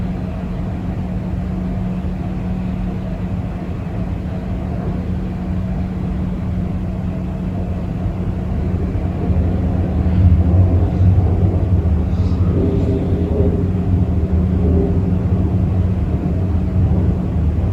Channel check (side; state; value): both; identical; correlation 1.00